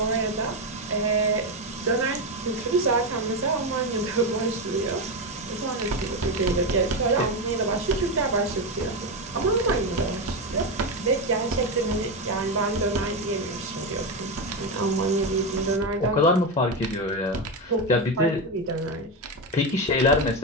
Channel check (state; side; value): normal; both; correlation 0.12